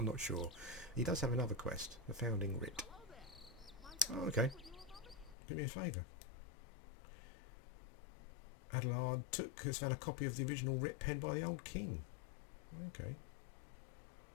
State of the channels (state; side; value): drops out; right; at 5.4 s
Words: not sure. He does have another quest, the Founding Writ. Oh, okay. Do me a favour. Adelard Took has found a copy of the original writ penned by the old king. Okay.